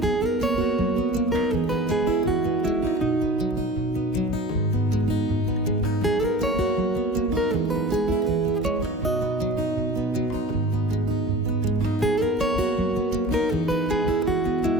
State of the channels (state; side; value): normal; both; correlation 0.40